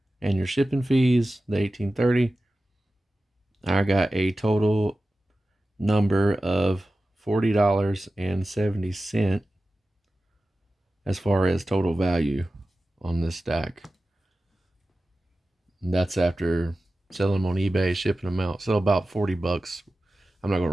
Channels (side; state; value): both; normal; correlation 0.95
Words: and your shipping fees, the $18.30. I got a total number of $40.70 as far as total value on this stack. And that's after selling them on eBay, shipping them out. So about $40. I'm not going